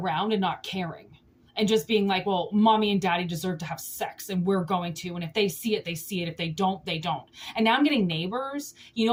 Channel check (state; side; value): identical; both; correlation 1.00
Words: and not caring. And just being like, well, mommy and daddy deserve to have sex and we're going to. And if they see it, they see it. If they don't, they don't. And now I'm getting Neighbors. You